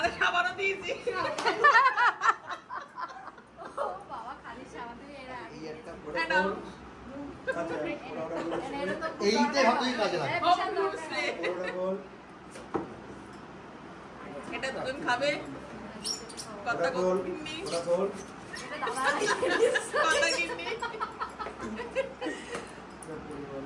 সাবানও দিয়েছি। এটা দুজন খাবে। কথা কিন্নি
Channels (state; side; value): identical; both; correlation 1.00